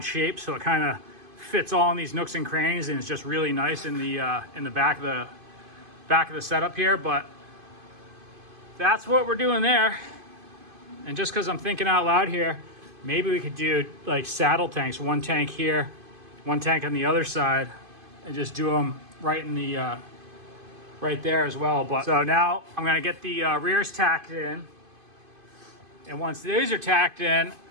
shape so it kind of fits all in these nooks and crannies, and it's just really nice in the back of the setup here. But that's what we're doing there. And just because I'm thinking out loud here, maybe we could do like saddle tanks, one tank here, one tank on the other side, and just do them right in the right there as well. But so now I'm gonna get the rears tacked in, and once these are tacked in,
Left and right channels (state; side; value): late; left; 2.5 ms